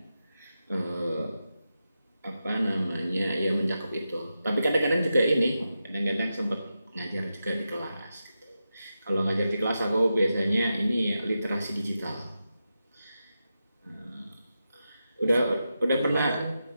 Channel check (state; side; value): inverted; both; correlation -0.89